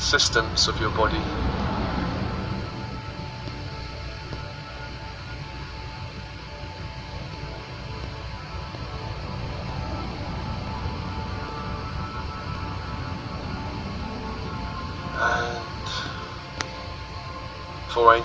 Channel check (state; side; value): identical; both; correlation 1.00